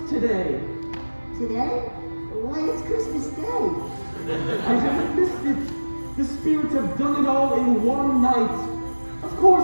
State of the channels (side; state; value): both; inverted; correlation -1.00